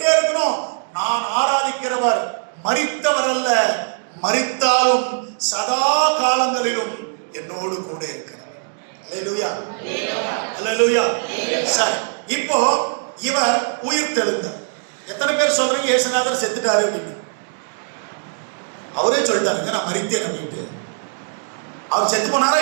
இருக்கணும். நான் ஆராதிக்கிறவர் மரித்தவர் அல்ல, மரித்தாலும் சதா காலங்களிலும் என்னோடு கூட இருக்கிறார். அல்லேலூயா, அல்லேலூயா. சரி, இப்போ இவர் உயிர்த்தெழுந்தார். எத்தனை பேர் சொல்றீங்க இயேசுநாதர் செத்துட்டாரு அப்படின்னு? அவரே சொல்லிட்டாருங்க நான் மரித்தேன் அப்படின்ட்டு. அவர் செத்து போனாரா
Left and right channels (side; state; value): left; silent; digital silence